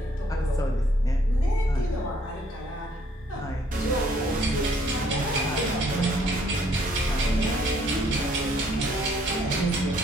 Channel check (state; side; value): normal; both; correlation 0.65